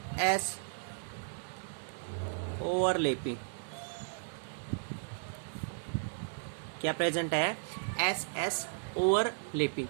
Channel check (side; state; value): left; silent; 55 dB below the other